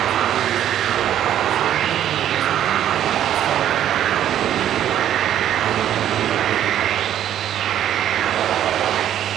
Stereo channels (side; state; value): left; quieter; 11.0 dB